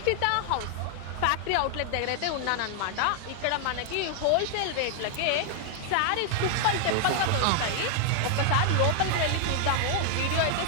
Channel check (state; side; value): different; both; correlation 0.00